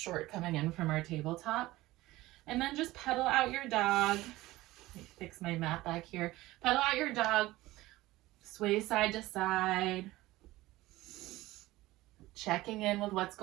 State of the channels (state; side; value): quieter; left; 18.0 dB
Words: coming in from our tabletop. And then just pedal out your dog. Let me fix my mat back here. Pedal out your dog. Sway side to side. Checking in with what's